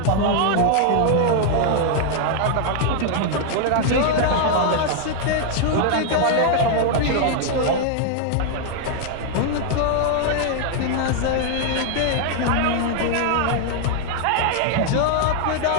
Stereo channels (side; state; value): both; different; correlation 0.00